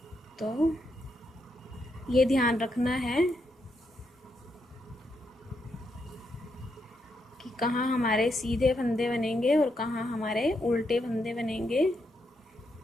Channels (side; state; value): both; normal; correlation 0.80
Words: तो ये ध्यान रखना है कि कहाँ हमारे सीधे फंदे बनेंगे और कहाँ हमारे उल्टे फंदे बनेंगे।